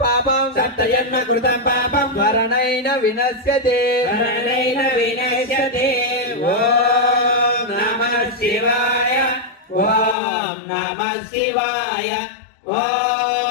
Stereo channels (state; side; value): drops out; right; at 10.2 s